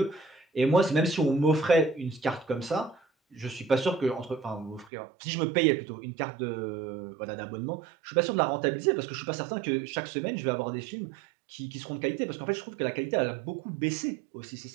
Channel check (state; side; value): drops out; left; at 4.9 s